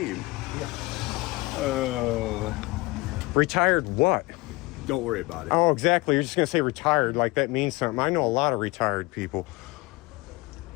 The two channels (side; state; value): right; quieter; 22.8 dB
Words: Retired what? Don't worry about it. Oh, exactly. You're just gonna say retired like that means something. I know a lot of retired people.